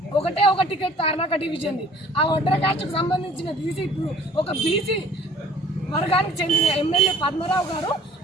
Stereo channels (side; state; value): both; normal; correlation 0.52